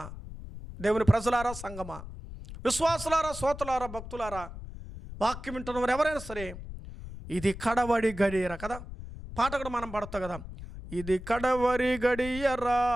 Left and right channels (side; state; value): left; noise; rumble, 11 dB below the sound